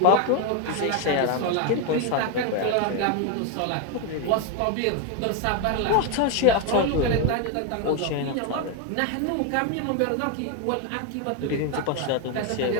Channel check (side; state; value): both; different; correlation 0.01